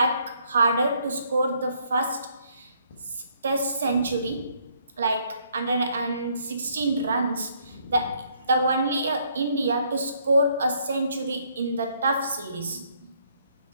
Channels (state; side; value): inverted; both; correlation -0.68